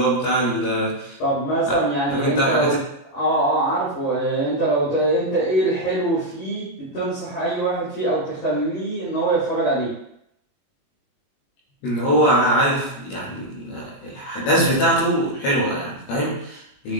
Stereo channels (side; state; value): right; late; 21 ms